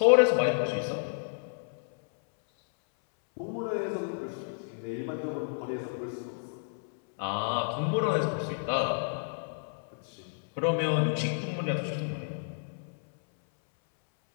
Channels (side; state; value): right; silent; 57 dB below the other